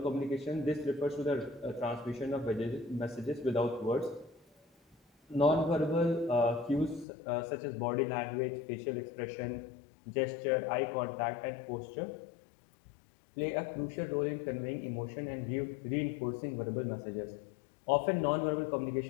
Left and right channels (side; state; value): right; drops out; at 7.1 s